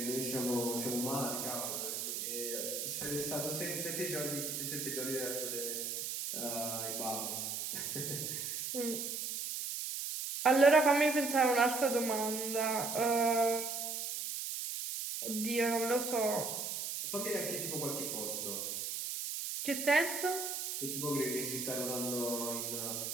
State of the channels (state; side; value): noise; right; hiss, 3 dB below the sound